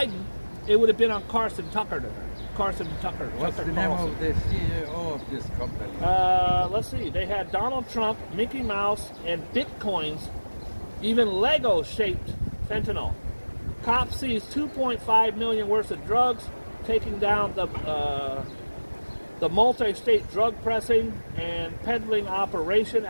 it would have been on Carson Tucker. What's the name of the CEO of this company? Let's see. They had Donald Trump, Mickey Mouse, and Bitcoins, even Lego-shaped fentanyl. Cops seized 2.5 million worth of drugs, taking down the multi-state drug pressing and peddling operation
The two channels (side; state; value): both; inverted; correlation -1.00